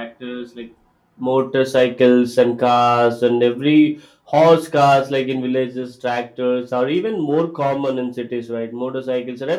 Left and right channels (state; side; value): identical; both; correlation 1.00